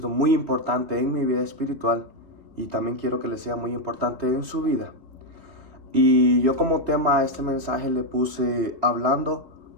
muy importante en mi vida espiritual y también quiero que le sea muy importante en su vida. Y yo como tema a este mensaje le puse hablando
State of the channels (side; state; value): left; late; 2.8 ms